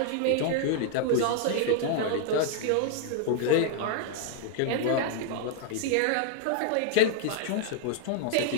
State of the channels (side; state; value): both; different; correlation 0.00